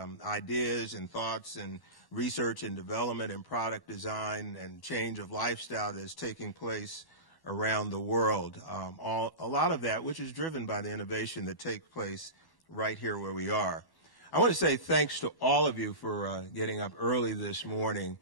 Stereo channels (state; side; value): late; right; 1.1 ms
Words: ideas and thoughts and research and development and product design and change of lifestyle that is taking place around the world. A lot of that which is driven by the innovation that takes place right here where we are. I want to say thanks to all of you for getting up early this morning.